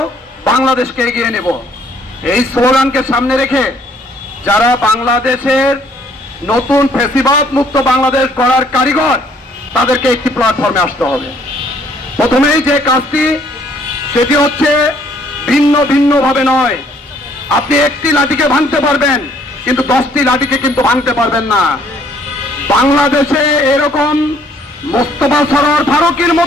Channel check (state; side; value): normal; both; correlation 0.63